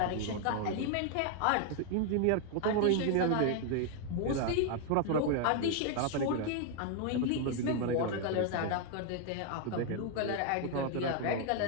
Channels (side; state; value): both; different; correlation 0.00